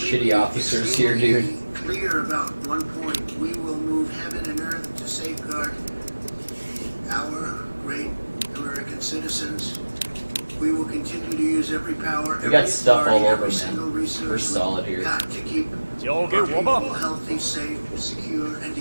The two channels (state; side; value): inverted; both; correlation -1.00